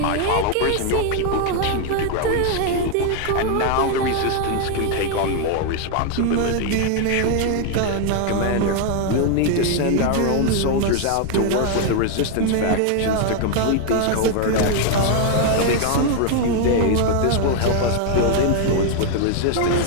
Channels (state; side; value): different; both; correlation 0.00